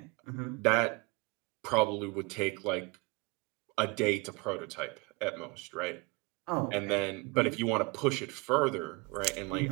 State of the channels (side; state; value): left; quieter; 26.7 dB